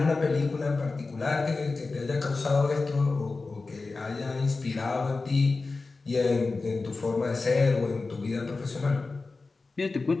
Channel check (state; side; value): quieter; right; 3.8 dB